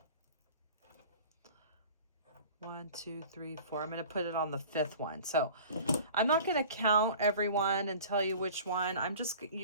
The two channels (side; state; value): both; inverted; correlation -0.43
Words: One, two, three, four. I'm going to put it on the 5th one. So I'm not going to count everyone and tell you which one.